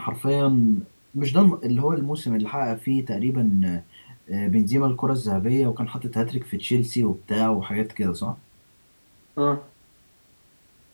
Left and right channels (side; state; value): both; inverted; correlation -1.00